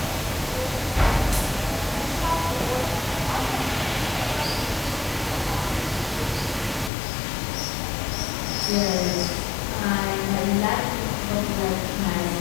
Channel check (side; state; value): right; drops out; at 6.9 s